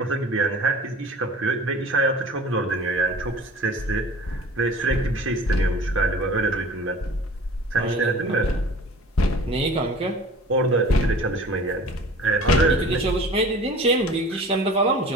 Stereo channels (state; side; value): normal; both; correlation 0.43